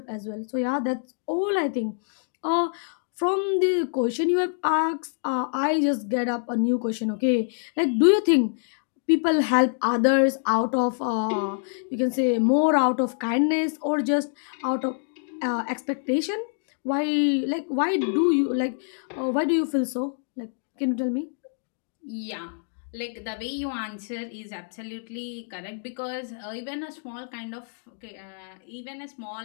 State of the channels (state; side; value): silent; right; digital silence